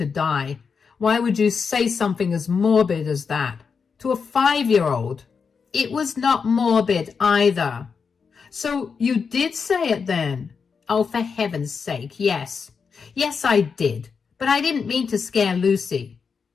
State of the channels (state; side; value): quieter; right; 5.7 dB